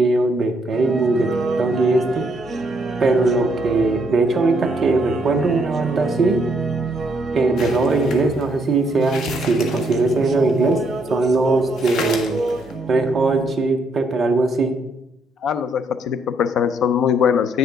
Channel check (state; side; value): normal; both; correlation 0.72